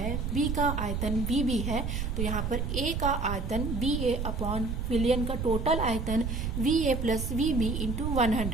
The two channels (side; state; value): right; noise; rumble, 2 dB below the sound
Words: B का आयतन VB है, तो यहाँ पर A का आयतन BA अपॉन विलयन का टोटल आयतन VA प्लस VB इंटू